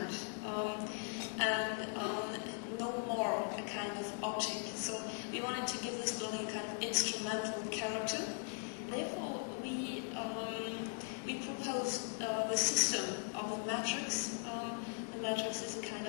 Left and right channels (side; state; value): right; silent; 51 dB below the other